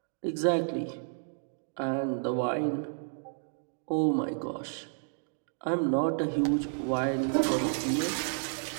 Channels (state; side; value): silent; left; digital silence